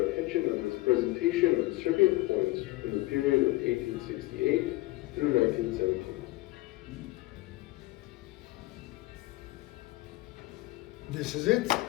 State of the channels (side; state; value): right; quieter; 19.5 dB